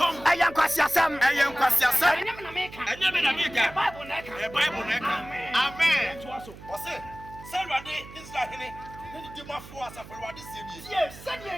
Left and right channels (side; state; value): right; noise; hum, 17 dB below the sound